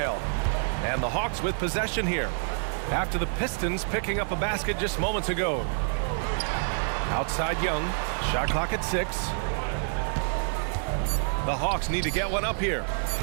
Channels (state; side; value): silent; left; 60 dB below the other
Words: And the Hawks with possession here. After the Pistons picking up a basket just moments ago. Outside Young. Shot clock at 6. The Hawks need to get one up here.